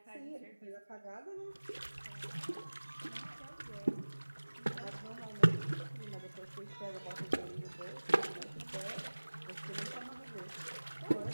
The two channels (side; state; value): both; inverted; correlation -1.00